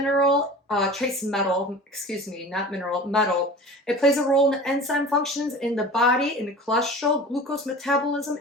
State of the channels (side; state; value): both; normal; correlation 0.38